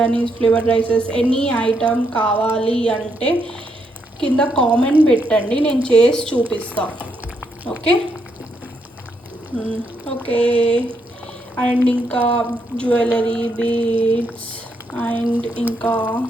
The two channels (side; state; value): both; normal; correlation 0.77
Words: flavour rices, any item కావాలి అంటే కింద కామెంట్ పెట్టండి, నేను చేసి చూపిస్తాను. Okay okay. అండ్ ఇంకా జ్యువెలరీ, బీడ్స్ అండ్ ఇంకా